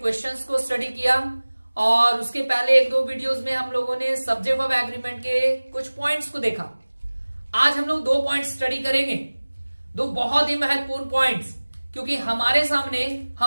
को स्टडी किया और उसके पहले एक दो वीडियोस में हम लोगों ने सब्जेक्ट ऑफ एग्रीमेंट के कुछ पॉइंट्स को देखा। आज हम लोग दो पॉइंट्स स्टडी करेंगे, दो बहुत ही महत्वपूर्ण पॉइंट्स, क्योंकि हमारे सामने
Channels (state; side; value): inverted; both; correlation -1.00